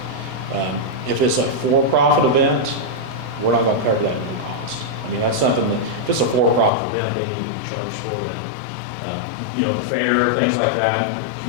If it's a for-profit event, we're not going to cover that at no cost. I mean, that's something that, if it's a for-profit event, they need to be charged for that. The fair, things like that,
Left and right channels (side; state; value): right; drops out; at 6.7 s